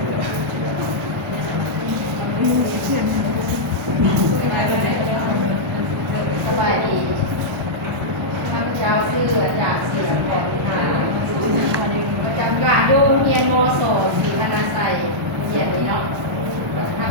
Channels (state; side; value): normal; both; correlation -0.09